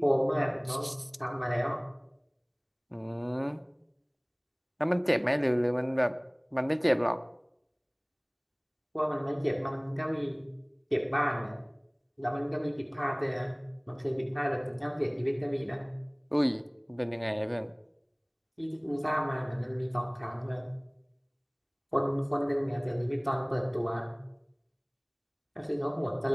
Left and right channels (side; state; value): both; identical; correlation 1.00